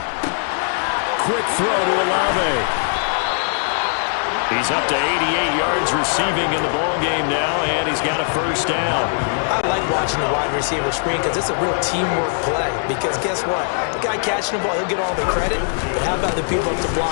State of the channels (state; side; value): silent; right; digital silence